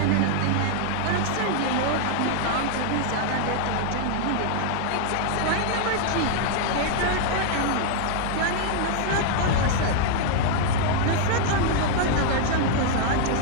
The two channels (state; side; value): different; both; correlation 0.00